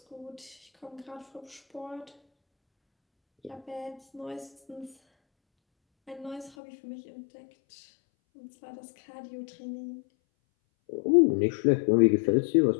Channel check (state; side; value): drops out; right; at 6.5 s